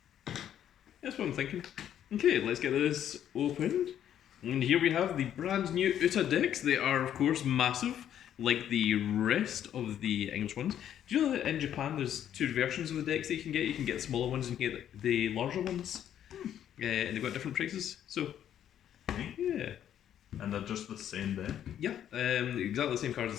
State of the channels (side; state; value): right; quieter; 10.3 dB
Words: That's what I'm thinking. Okay, let's get this opened. And here we have the brand new Uta decks. They are, of course, massive, like the rest of the English ones. Do you know that in Japan there's two versions of the decks that you can get? You can get the smaller ones and you can get the larger ones. And they've got different prices. So, yeah. And they're just the same deck. Yeah, exactly the same cards